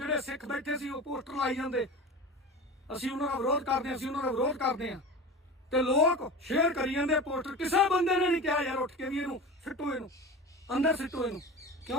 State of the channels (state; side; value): normal; both; correlation 0.30